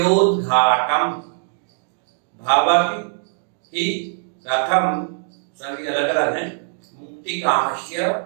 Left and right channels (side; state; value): left; silent; digital silence